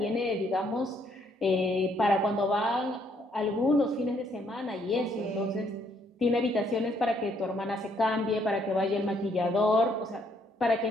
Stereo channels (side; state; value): both; normal; correlation 0.69